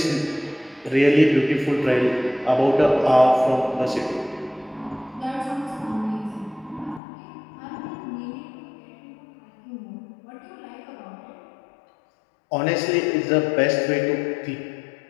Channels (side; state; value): right; drops out; at 7.0 s